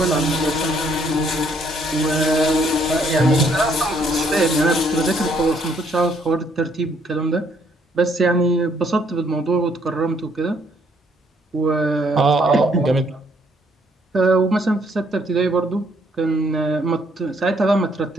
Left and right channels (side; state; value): both; normal; correlation 0.68